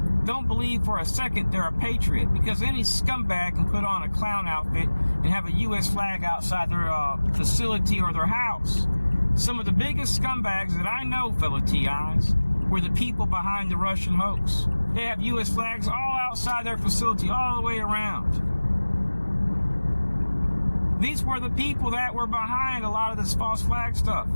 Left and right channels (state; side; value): inverted; both; correlation -1.00